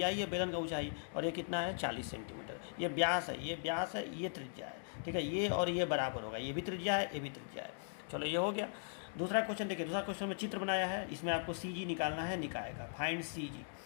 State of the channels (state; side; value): silent; right; digital silence